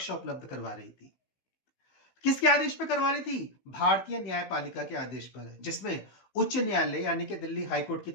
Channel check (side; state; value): right; late; 15 ms